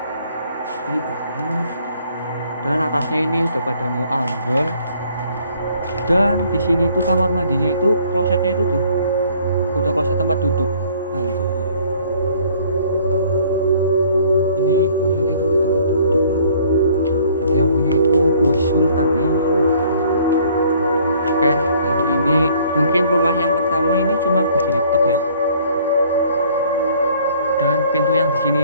Ini banget. Dan atasnya ini udah pada mau ambrol. Dan di sini tuh kamar mandinya itu klosetnya itu tuh udah kloset tempat duduk. Anjir. Ini klosetnya itu udah tempat duduk. Berarti yang punya itu Sultan men. Oke, kali ini mungkin rumah yang pertama ini cuma begini tok ya. Dan pintu yang di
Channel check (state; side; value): inverted; both; correlation -0.58